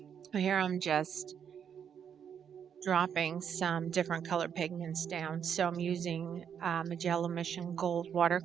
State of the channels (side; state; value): left; quieter; 8.0 dB